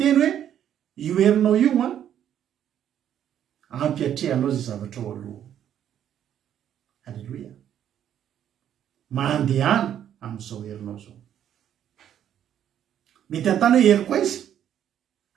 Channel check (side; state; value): left; quieter; 10.1 dB